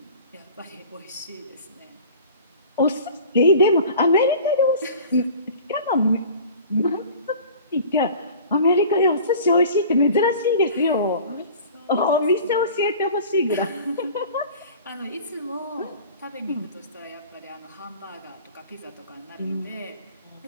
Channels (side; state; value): both; inverted; correlation -0.42